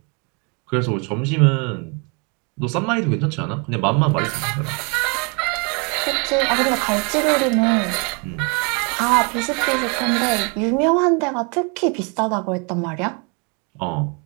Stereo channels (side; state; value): left; quieter; 33.2 dB